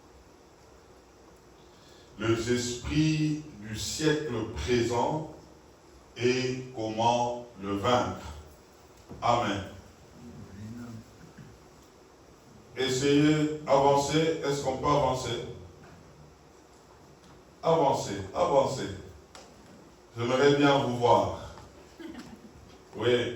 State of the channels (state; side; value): identical; both; correlation 1.00